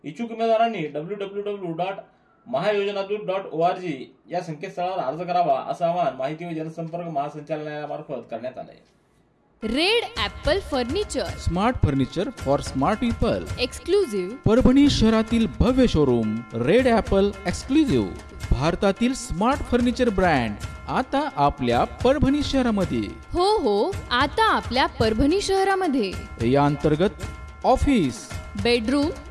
इच्छुक उमेदवारांनी www.mahayojanadut.org या संकेतस्थळावर अर्ज करावा असं आवाहन माहिती व जनसंपर्क महासंचालनालयामार्फत करण्यात आलं आहे. Red Apple furniture, smart furniture for smart people. Exclusive. Parbhani शहरातील भव्य शोरूम रेड ॲपल एक्सक्लुझिव्ह. भारतातील स्मार्ट फर्निचर ब्रँड आता आपल्या परभणी शहरामध्ये. हो, आता आपल्या परभणी शहरामध्ये. या अंतर्गत ऑफिस, बेडरूम,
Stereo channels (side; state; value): both; identical; correlation 1.00